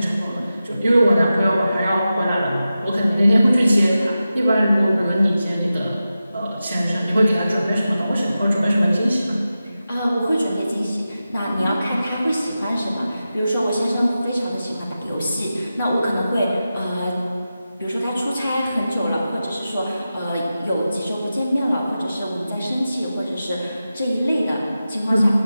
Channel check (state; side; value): inverted; both; correlation -0.92